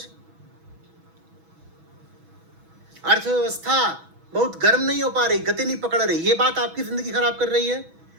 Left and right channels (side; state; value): left; late; 6.1 ms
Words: अर्थव्यवस्था बहुत गर्म नहीं हो पा रही, गति नहीं पकड़ रही, ये बात आपकी जिंदगी खराब कर रही है?